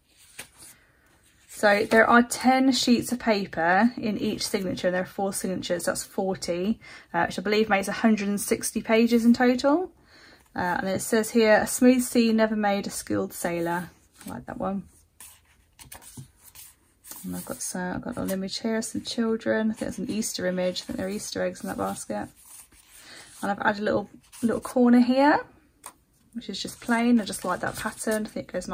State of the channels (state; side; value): identical; both; correlation 1.00